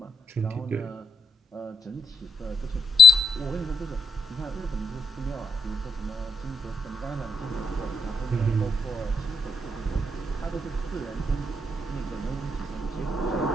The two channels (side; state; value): both; normal; correlation 0.78